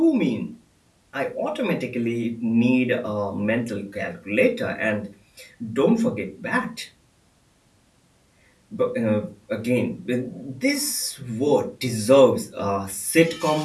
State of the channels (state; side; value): identical; both; correlation 1.00